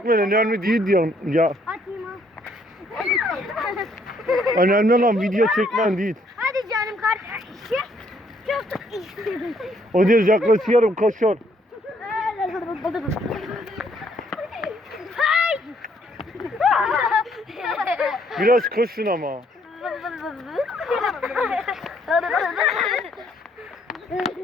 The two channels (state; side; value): normal; both; correlation 0.68